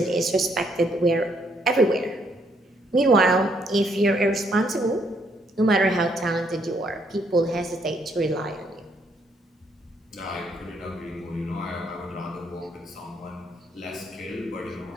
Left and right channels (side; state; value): both; normal; correlation 0.71